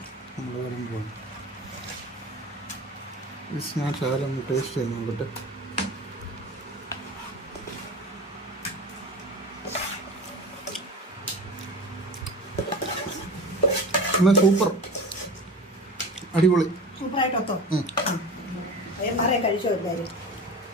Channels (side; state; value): both; normal; correlation 0.34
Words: നമ്മൾ വരുമ്പോൾ ഞാൻ ശകലം ടേസ്റ്റ് ചെയ്ത് നോക്കട്ടെ. എന്നാൽ സൂപ്പർ, അടിപൊളി, സൂപ്പറായിട്ടോ. മാറെ കഴിച്ചോ എല്ലാവരും.